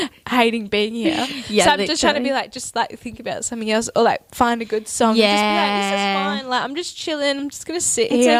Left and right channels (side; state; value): both; identical; correlation 1.00